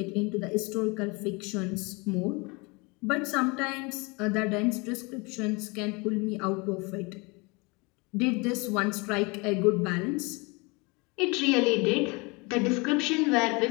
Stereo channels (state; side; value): quieter; right; 27.9 dB